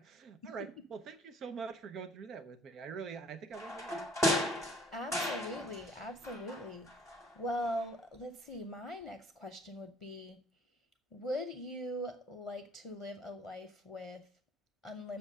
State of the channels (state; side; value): normal; both; correlation 0.57